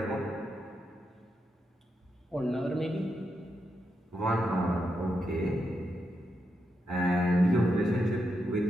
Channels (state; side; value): normal; both; correlation 0.84